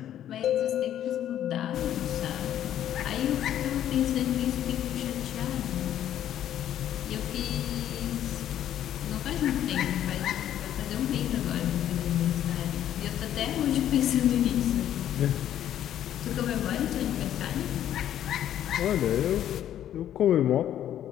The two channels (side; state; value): right; quieter; 11.2 dB